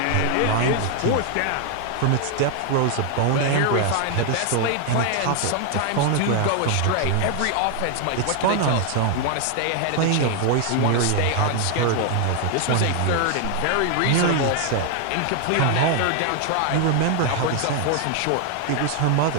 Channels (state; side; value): different; both; correlation 0.00